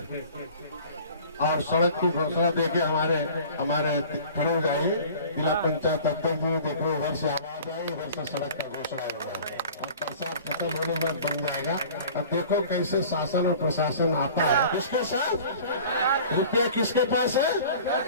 और सड़क की घोषणा देके हमारे खड़े हो जाइए, जिला पंचायत अध्यक्ष जी देखो, उधर से आवाज आई, उधर से सड़क का घोषणा हो गया और बरसात खत्म होने के बाद बन जाएगा। अब देखो कैसे शासन और प्रशासन आता है, किसके साथ, रुपया किसके पास है,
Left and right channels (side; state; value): both; inverted; correlation -0.45